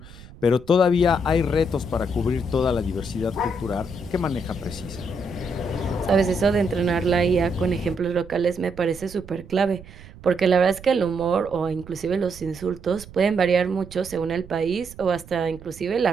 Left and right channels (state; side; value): noise; right; rumble, 18 dB below the sound